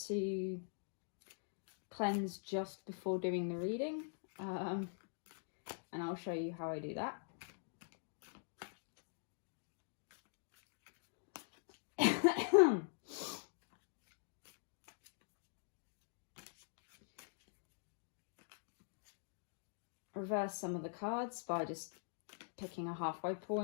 to cleanse just before doing the reading. And I'll show you how I do that. Reverse some of the cards by just picking a halfway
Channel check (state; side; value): silent; right; digital silence